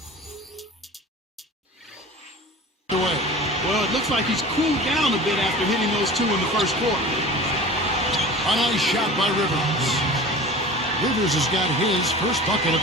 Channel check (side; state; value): both; normal; correlation 0.38